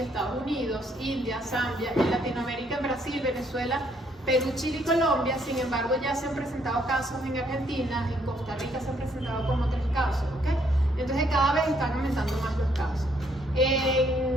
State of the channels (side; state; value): both; normal; correlation 0.69